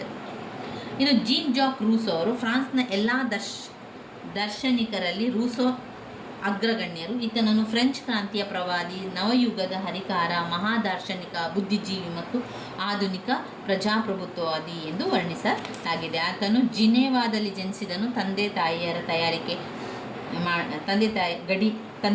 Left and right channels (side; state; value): both; identical; correlation 1.00